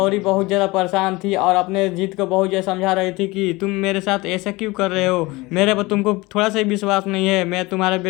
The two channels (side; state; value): right; quieter; 22.4 dB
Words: बहुत ज्यादा परेशान थी और अपने जीत को बहुत ज्यादा समझा रही थी कि तुम मेरे साथ ऐसा क्यों कर रहे हो, मेरे पर तुमको थोड़ा सा ही विश्वास नहीं है, मैं तुम्हारे